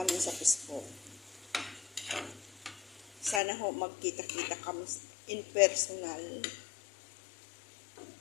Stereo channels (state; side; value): drops out; right; at 3.4 s